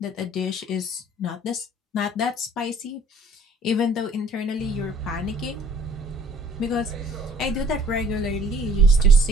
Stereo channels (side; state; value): both; normal; correlation 0.55